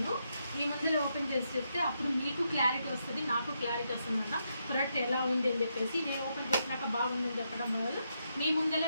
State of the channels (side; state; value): both; inverted; correlation -0.81